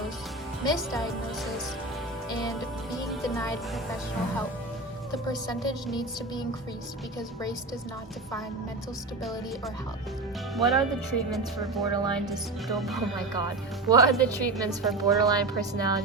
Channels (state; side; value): quieter; left; 3.1 dB